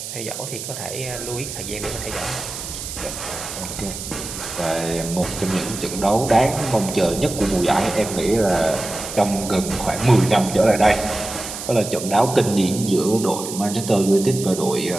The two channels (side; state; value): right; noise; hiss, 8 dB below the sound